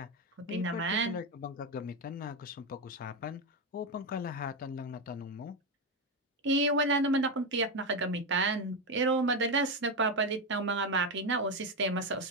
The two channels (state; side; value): normal; both; correlation 0.10